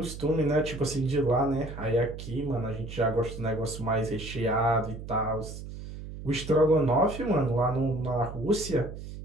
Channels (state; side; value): noise; right; hum, 11 dB below the sound